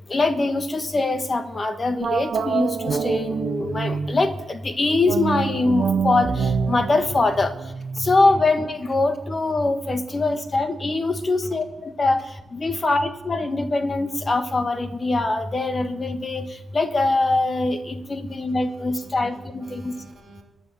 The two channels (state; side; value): normal; both; correlation 0.89